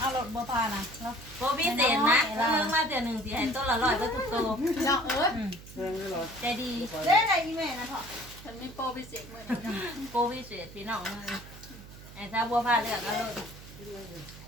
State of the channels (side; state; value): right; noise; hum, 17 dB below the sound